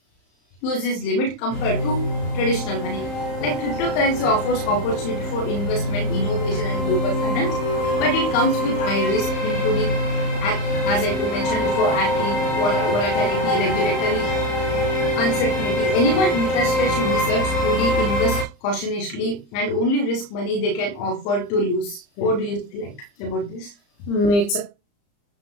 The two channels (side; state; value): right; late; 34 ms